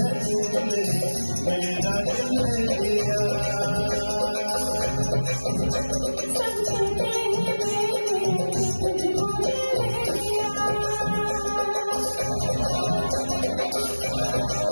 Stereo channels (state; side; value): inverted; both; correlation -1.00